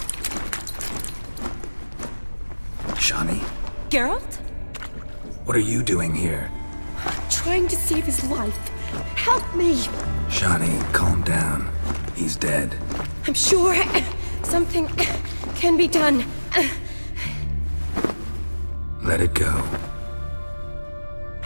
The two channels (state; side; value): inverted; both; correlation -1.00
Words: Shani? Geralt? What are you doing here? Trying to save his life. Help me. Shani, calm down. He's dead. I'm sure something can be done. Let it go.